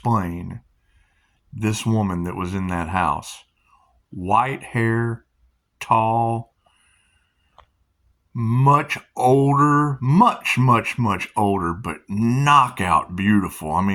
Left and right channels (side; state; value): both; identical; correlation 1.00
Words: this woman that was in that house. White hair, tall, much older, much older, but knockout beautiful. I